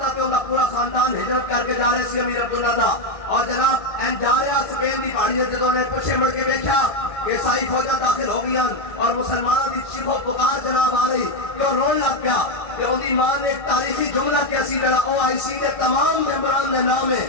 تے ان کا پورا خاندان ہجرت کر کے جا رہے سی امیر عبداللہ دا اور جناب این جا رہا سپین دی پہاڑیاں جدوں نے پیچھے مڑ کے دیکھا کہ عیسائی فوجاں داخل ہو گئی اور مسلمانوں کی چیخ و پکار جناب آ رہی کہ رون لگ گیا کہ ان کی ماں نے ایک تاریخی جملہ کیسی جڑا او آئی سی کے تمام ممبران نے نام ہے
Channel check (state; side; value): late; right; 1.6 ms